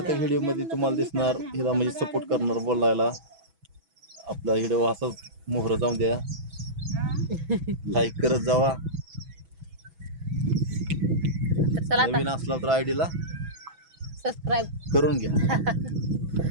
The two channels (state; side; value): late; left; 6.1 ms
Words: व्हिडिओ मध्ये तुम्हाला दिसणार हिला म्हणजे सपोर्ट करणार बोलायला. आपला व्हिडिओ असाच मोहर जाऊन द्या लाईक करत जावा. तर चला आता नवीन असला तर आयडीला सबस्क्राईब करून घ्या.